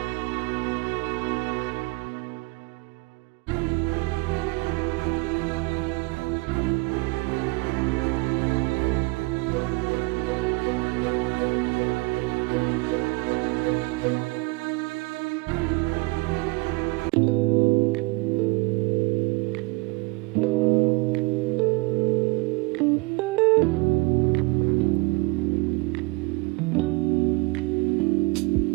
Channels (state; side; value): quieter; left; 26.3 dB